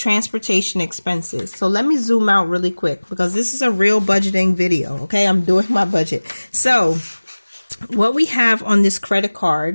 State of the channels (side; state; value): both; inverted; correlation -1.00